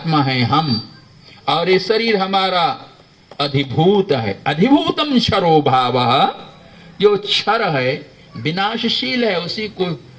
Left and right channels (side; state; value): both; identical; correlation 1.00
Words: है हम, और ये शरीर हमारा अधिभूत है। अधिभूतम क्षरो भावः, जो क्षर है, विनाशशील है, उसी को